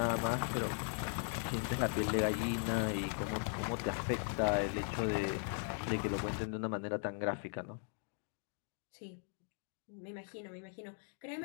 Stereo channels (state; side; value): silent; right; 52 dB below the other